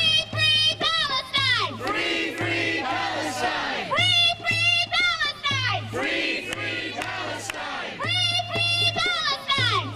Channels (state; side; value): identical; both; correlation 1.00